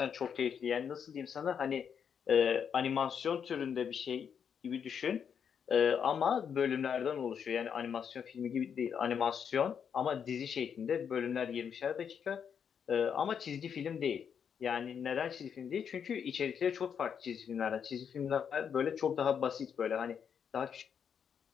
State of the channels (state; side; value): quieter; right; 7.5 dB